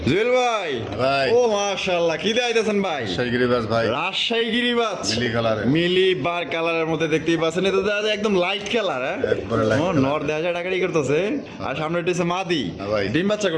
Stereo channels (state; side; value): identical; both; correlation 1.00